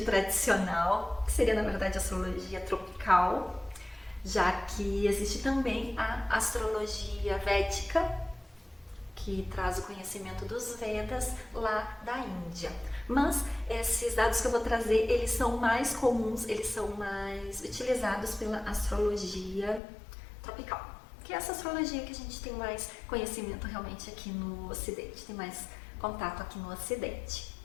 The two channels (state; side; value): drops out; right; at 19.8 s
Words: tradicional, que seria na verdade a astrologia tropical, já que existe também a astrologia védica, que traz o conhecimento dos Vedas lá da Índia. Mas esses dados que eu vou trazer, eles são mais comuns, eles são mais utilizados pela astrologia tropical, que é essa astrologia que a gente tem mais conhecimento realmente aqui no Ocidente, tem mais contato aqui no Ocidente.